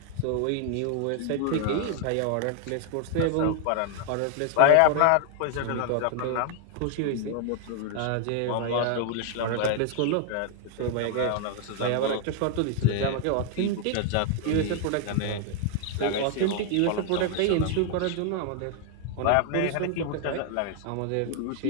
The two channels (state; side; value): different; both; correlation 0.00